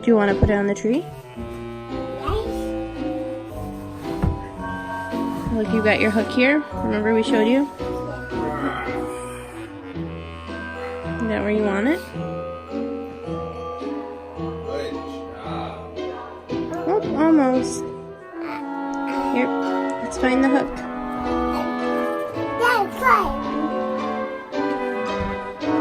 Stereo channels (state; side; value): identical; both; correlation 1.00